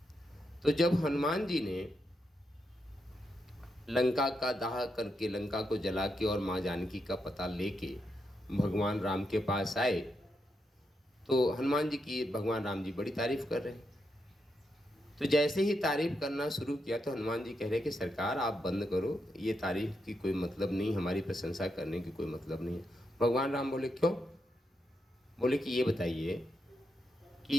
तो जब हनुमान जी ने लंका का दाह करके, लंका को जला के और माँ जानकी का पता लेके भगवान राम के पास आए तो हनुमान जी की भगवान राम जी बड़ी तारीफ कर रहे हैं। तो जैसे ही तारीफ करना शुरू किया तो हनुमान जी कह रहे कि सरकार आप बंद करो, ये तारीफ की कोई मतलब नहीं, हमारी प्रशंसा करने की कोई मतलब नहीं है। भगवान राम बोले क्यों? बोले कि ये बताइए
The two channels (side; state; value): both; normal; correlation 0.83